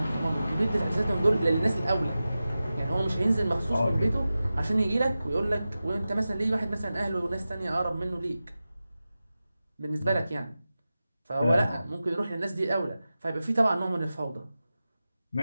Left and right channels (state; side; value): inverted; both; correlation -0.94